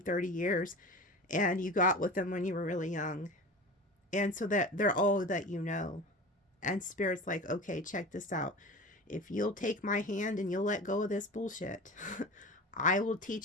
30 years and you got with them when you were really young. And so that they're all that you know. And Spirit's like, okay, check this out. If you'll take my hand and you'll let go of this bullshit, I will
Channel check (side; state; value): both; normal; correlation 0.34